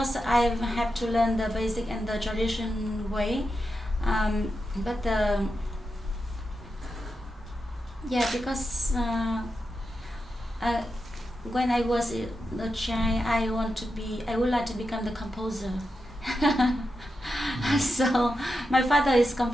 I have to learn the basic and the tradition way. But because when I was a child, I would like to become the composer. So my father is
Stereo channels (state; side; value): normal; both; correlation 0.88